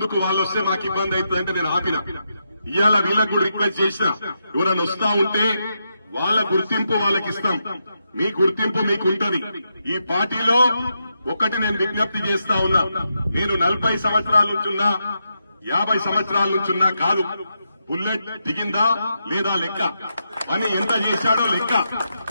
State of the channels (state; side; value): inverted; both; correlation -0.84